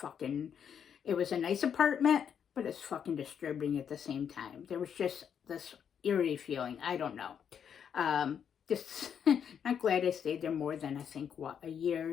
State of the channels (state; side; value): quieter; right; 8.0 dB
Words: it was a nice apartment, but it's fucking disturbing at the same time. There was just this eerie feeling. I don't know. Just not glad I stayed there more than, I think, a